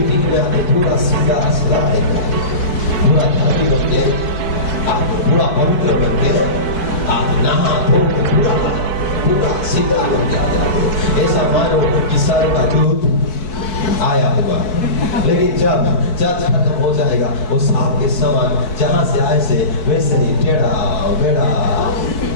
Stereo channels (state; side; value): late; right; 4.6 ms